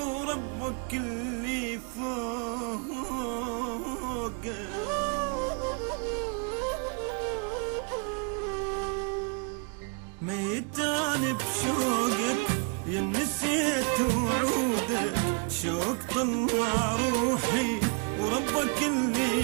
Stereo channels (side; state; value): left; quieter; 38.2 dB